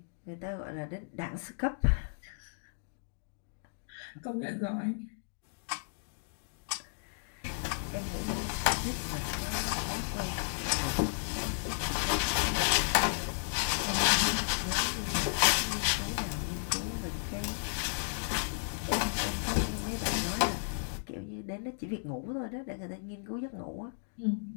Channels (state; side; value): silent; right; digital silence